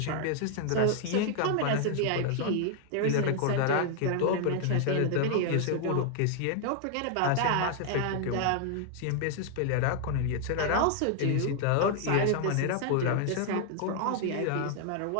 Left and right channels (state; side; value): different; both; correlation 0.00